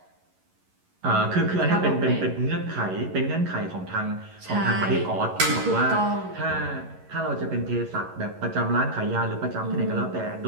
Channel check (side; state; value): left; late; 11 ms